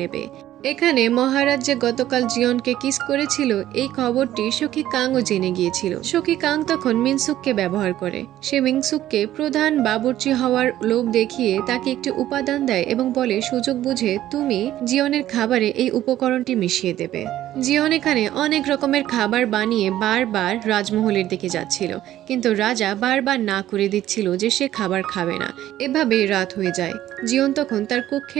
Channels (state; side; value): quieter; left; 13.2 dB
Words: নেবে। এখানে মহারাজ যে গতকাল জিয়নকে কিস করেছিল এই খবরটি সখী কাংও জেনে গিয়েছিল। সখী কাং তখন মিনসুককে ব্যবহার করে। সে মিনসুককে প্রধান বাবুর্চি হওয়ার লোভ দেখিয়ে তাকে একটি উপাদান দেয় এবং বলে, সুযোগ বুঝে তুমি জিয়নের খাবারে এই উপকরণটি মিশিয়ে দেবে। জিয়ন এখানে অনেক রকমের খাবার বানিয়ে বারবার রাজমহলের দিকে যাচ্ছিল, কিন্তু রাজা বারবার না করে দিচ্ছিল যে সে খাবার খাবে না। এভাবেই রাত হয়ে যায়। জিয়ন তখন তার